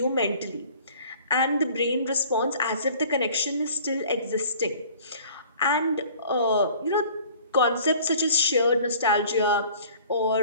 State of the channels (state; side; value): inverted; both; correlation -0.50